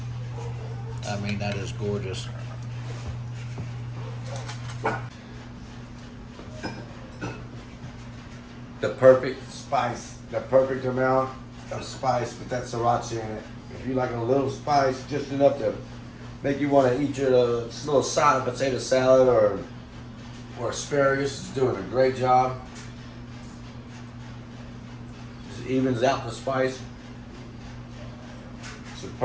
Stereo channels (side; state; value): both; identical; correlation 1.00